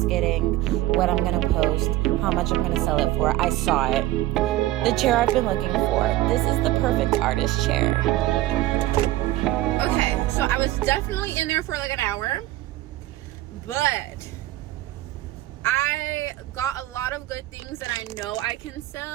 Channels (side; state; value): left; quieter; 15.8 dB